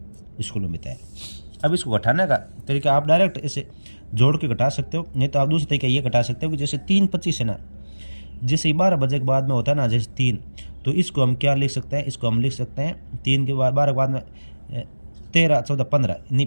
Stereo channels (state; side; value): inverted; both; correlation -1.00